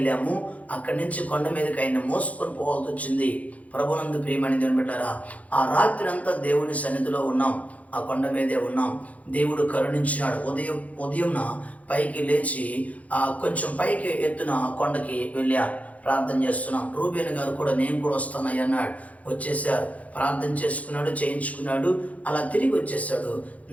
అక్కడి నుంచి కొండ మీదకి ఆయన మోసుకొని పోవాల్సి వచ్చింది. ప్రభునందు ప్రియమైన దేవుని బిడ్డలారా, ఆ రాత్రి అంతా దేవుని సన్నిధిలో ఉన్నాం. ఆ కొండ మీదే ఉన్నాం. దేవుడు కరుణించినాడు. ఉదయం పైకి లేచి కొంచెం పైకి ఎత్తున కొండకి వెళ్ళారు. ప్రార్థన చేస్తున్నాం. రూబేన్ గారు కూడా నేను కూడా వస్తానయ్య అన్నాడు. వచ్చేసారు. ప్రార్థన చేసుకున్నాడు, చేయించుకున్నాడు. అలా తిరిగి వచ్చేసాడు.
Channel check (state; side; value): late; right; 0.069 ms